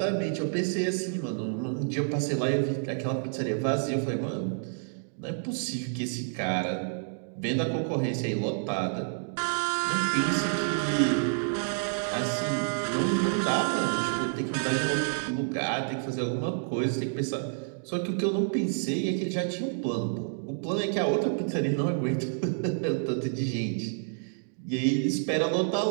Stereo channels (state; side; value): silent; left; digital silence